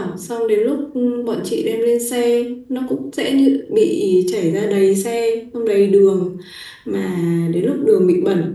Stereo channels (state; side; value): identical; both; correlation 1.00